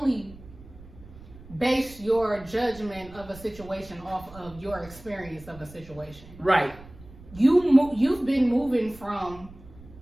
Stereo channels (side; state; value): right; noise; rumble, 19 dB below the sound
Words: base your judgment of a situation off of your experience of a situation. Right. You've been moving from